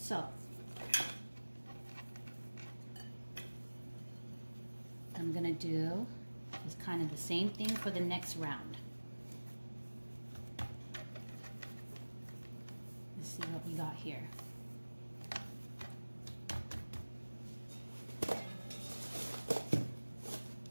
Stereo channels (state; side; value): inverted; both; correlation -1.00